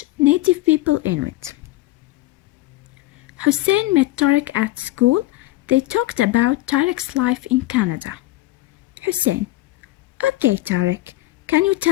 native people Inuit. Hussein met Tarek at school. They talked about Tarek's life in Canada. Hussein: Okay, Tarek, can you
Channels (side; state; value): right; quieter; 17.7 dB